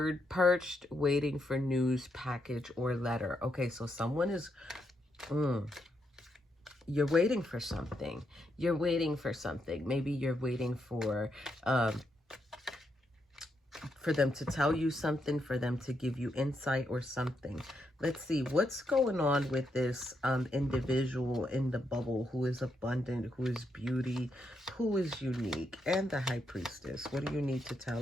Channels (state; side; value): normal; both; correlation 0.80